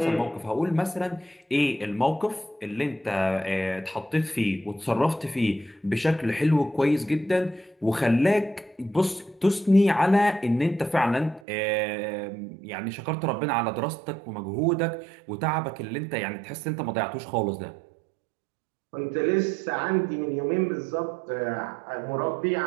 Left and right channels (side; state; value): left; drops out; at 11.4 s